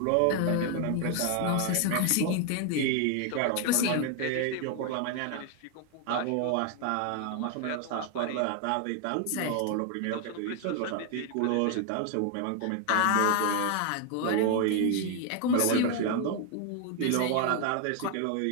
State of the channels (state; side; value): different; both; correlation 0.01